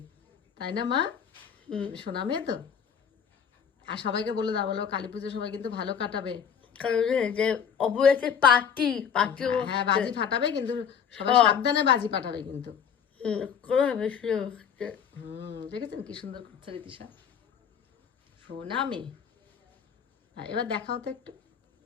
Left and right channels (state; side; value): quieter; right; 7.6 dB